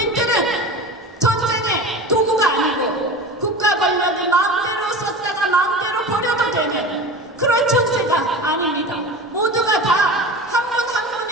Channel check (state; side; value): normal; both; correlation 0.32